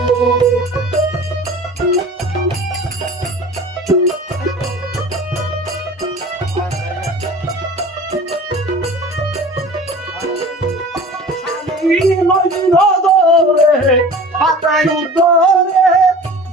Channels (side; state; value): both; normal; correlation 0.41